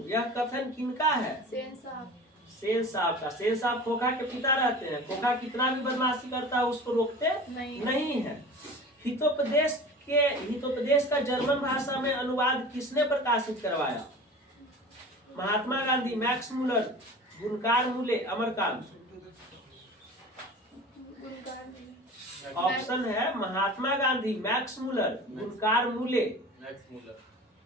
यह कथन किनका है? सेन साहब। सेन साहब का। सेन साहब खोखा के पिता रहते हैं। खोखा कितना भी बदमाशी करता है उसको रोकते नहीं है। हितोपदेश का जर्मन भाषा में अनुवाद किसने प्रकाशित करवाया? महात्मा गांधी, मैक्स मुलर, गुणकार मूले, अमरकांत। ऑप्शन है महात्मा गांधी, मैक्स मुलर, गुणकार मूले।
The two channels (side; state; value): both; normal; correlation 0.38